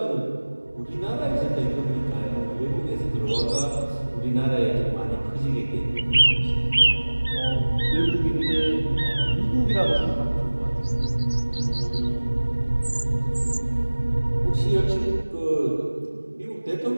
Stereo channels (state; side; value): inverted; both; correlation -1.00